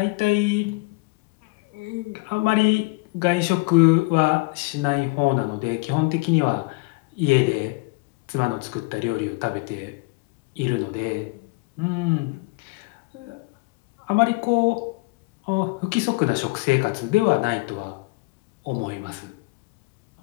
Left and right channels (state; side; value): quieter; right; 25.8 dB